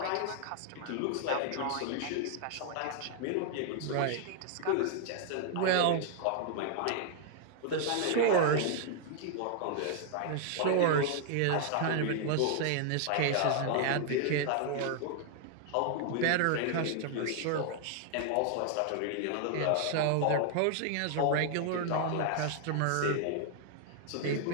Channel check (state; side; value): different; both; correlation 0.00